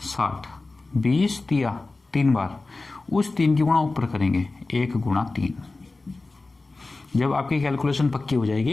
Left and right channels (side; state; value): right; quieter; 3.4 dB